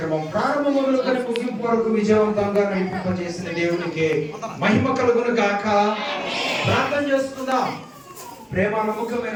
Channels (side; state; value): both; identical; correlation 1.00